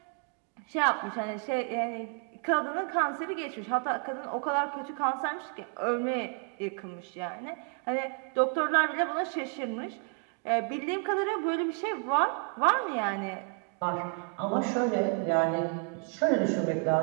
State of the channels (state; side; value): quieter; left; 36.9 dB